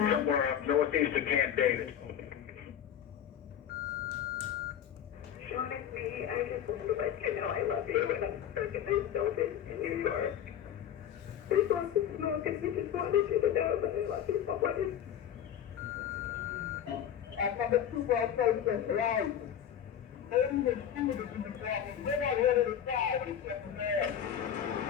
somewhere up northeast of Camp David. Honestly, I just want to let you know I love you, and I'm stuck in this building in New York. We want to smoke, and we just wanted you to know that I love you so much. I'm from the football process, right? Only the students in the problem. They're not ready to die except for there.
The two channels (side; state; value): right; quieter; 9.7 dB